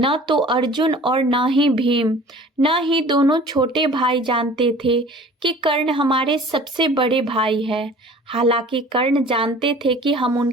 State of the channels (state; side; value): normal; both; correlation 0.46